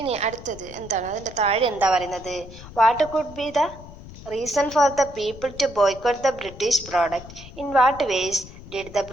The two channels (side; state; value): left; noise; rumble, 16 dB below the sound